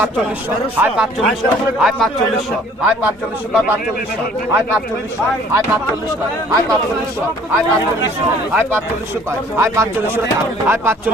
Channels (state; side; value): normal; both; correlation 0.55